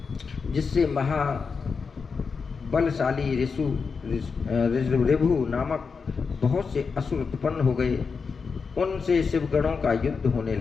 जिससे महाबलशाली ऋभु नामक बहुत से असुर उत्पन्न हो गए। उनसे शिवगणों का युद्ध होने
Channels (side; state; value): right; quieter; 5.3 dB